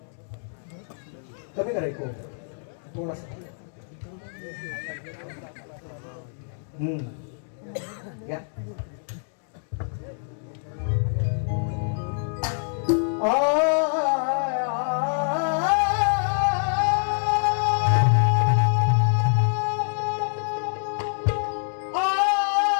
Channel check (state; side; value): silent; right; digital silence